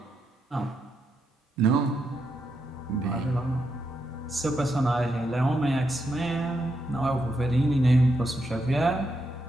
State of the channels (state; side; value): normal; both; correlation 0.82